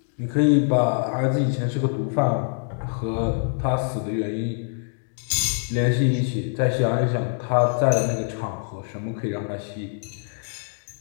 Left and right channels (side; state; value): right; silent; digital silence